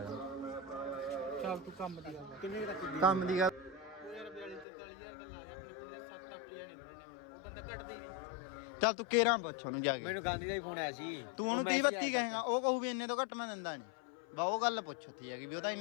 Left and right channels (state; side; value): drops out; right; at 4.7 s